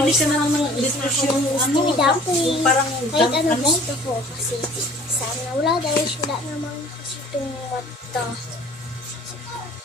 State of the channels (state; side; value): normal; both; correlation 0.49